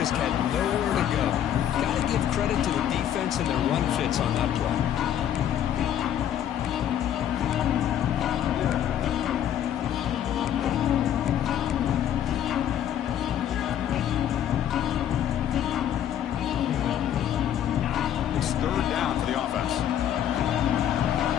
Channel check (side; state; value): right; quieter; 10.4 dB